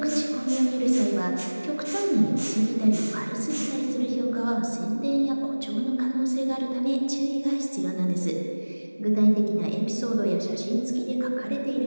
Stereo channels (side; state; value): both; inverted; correlation -1.00